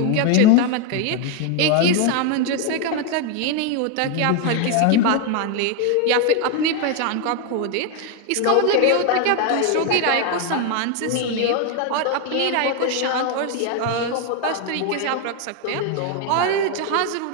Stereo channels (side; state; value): both; different; correlation 0.01